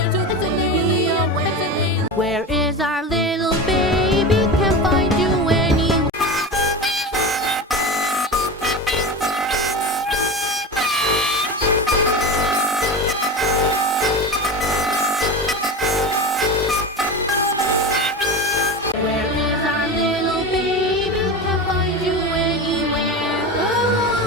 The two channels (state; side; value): normal; both; correlation 0.25